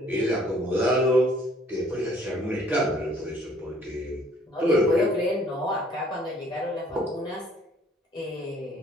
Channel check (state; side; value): normal; both; correlation 0.59